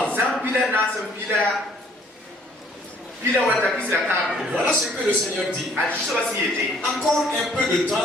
Voilà ce que le Seigneur dit. Encore un peu de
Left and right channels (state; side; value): normal; both; correlation 0.61